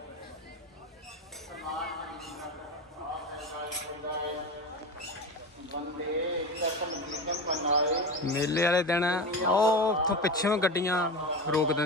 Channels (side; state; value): both; normal; correlation 0.25